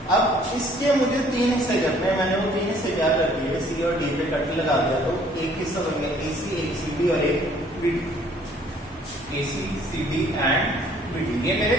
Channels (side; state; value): both; normal; correlation 0.59